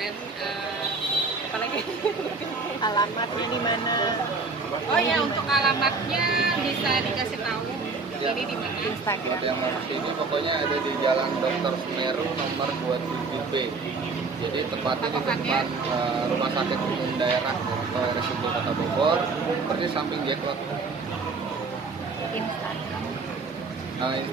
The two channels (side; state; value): left; quieter; 4.2 dB